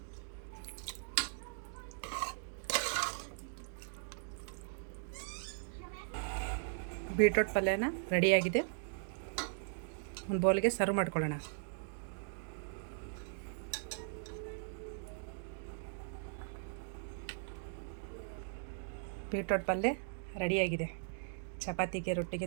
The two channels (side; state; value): left; silent; digital silence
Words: ಬೀಟ್ರೋಟ್ ಪಲ್ಯನ ರೆಡಿಯಾಗಿದೆ, ಒಂದು ಬೌಲ್ಗೆ ಸರ್ವ್ ಮಾಡ್ಕೊಳ್ಳೋಣ. ಬೀಟ್ರೋಟ್ ಪಲ್ಯ ರೆಡಿಯಾಗಿದೆ. ಚಪಾತಿಗೆ,